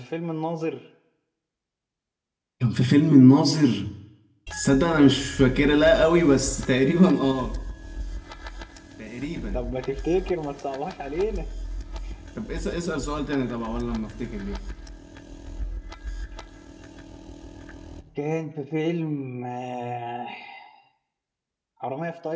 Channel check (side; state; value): both; identical; correlation 1.00